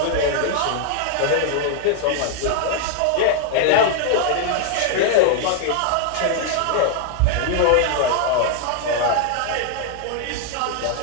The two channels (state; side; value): different; both; correlation 0.00